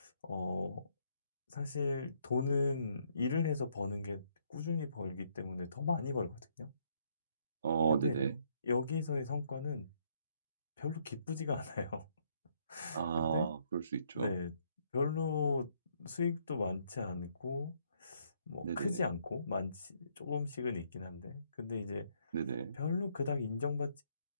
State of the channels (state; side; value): inverted; both; correlation -0.70